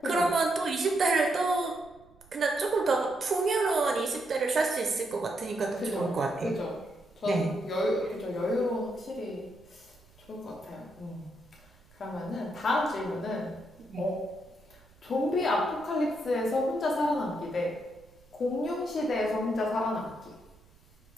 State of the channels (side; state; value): right; noise; rumble, 28 dB below the sound